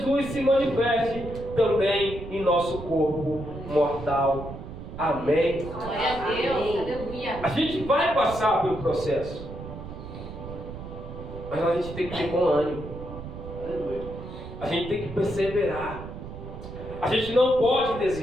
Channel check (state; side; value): noise; right; rumble, 11 dB below the sound